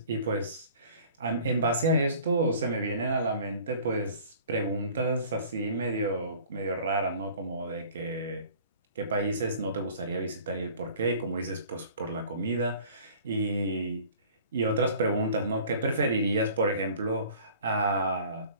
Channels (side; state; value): both; inverted; correlation -0.48